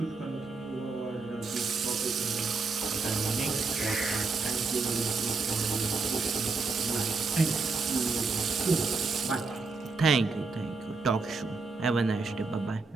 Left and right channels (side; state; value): left; quieter; 4.2 dB